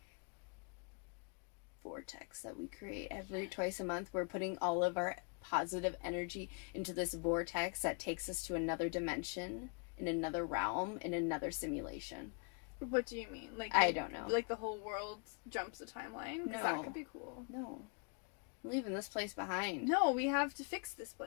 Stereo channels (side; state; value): right; quieter; 39.8 dB